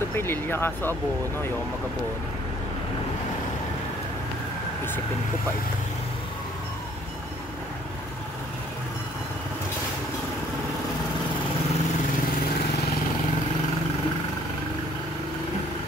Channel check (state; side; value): normal; both; correlation 0.60